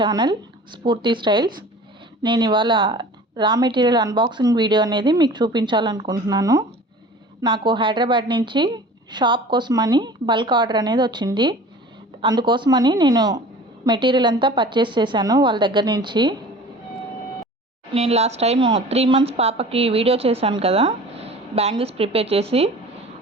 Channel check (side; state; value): both; normal; correlation 0.42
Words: స్ఫూర్తి స్టైల్స్. నేను ఇవాళ రా మెటీరియల్ అన్బాక్సింగ్ వీడియో అనేది మీకు చూపించాలనుకుంటున్నాను. నాకు హైదరాబాద్ నుంచి షాప్ కోసమని బల్క్ ఆర్డర్ అనేది వచ్చింది. అందుకోసమని నేను మెటీరియల్ అంతా పర్చేస్ చేశాను వాళ్ళ దగ్గర నుంచి. నేను లాస్ట్ టైం 3 months పాపకి వీడియో చేశాను కదా, బ్యాంగిల్స్ ప్రిపేర్ చేసి.